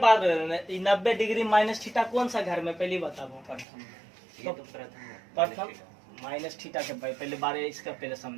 90 डिग्री माइनस थीटा कौन सा घर में पहली बताओ? प्रथम। ये तो प्रथम है। प्रथम माइनस थीटा के पहले बारे इसका पहले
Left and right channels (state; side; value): drops out; left; at 3.7 s